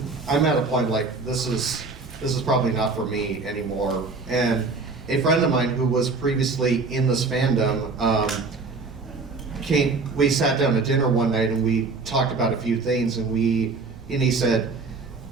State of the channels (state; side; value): quieter; left; 4.0 dB